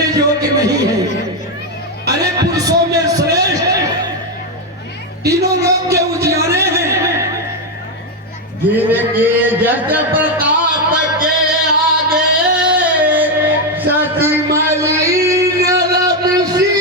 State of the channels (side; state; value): both; normal; correlation 0.06